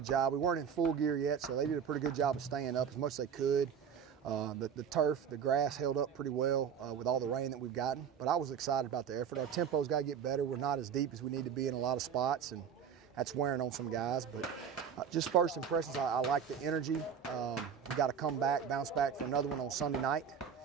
job. We weren't in full gear yet, so they did a pretty good job of staying up as much as they could. The turf, the grass held up pretty well with all the rain that we've gotten. But I was excited about the effort. Our tempo's got to get better. We're not as deep as we need to be in a lot of spots, and that's wearing on some guys. But just first impressions, I like the energy. We got to come back, bounce back for another one on Sunday night,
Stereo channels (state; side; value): quieter; left; 7.5 dB